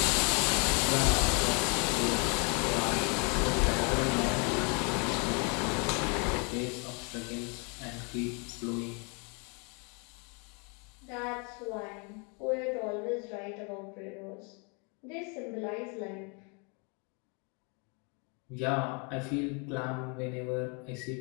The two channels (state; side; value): quieter; right; 34.5 dB